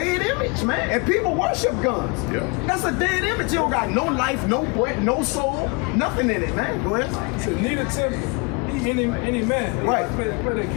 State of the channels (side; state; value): right; quieter; 30.7 dB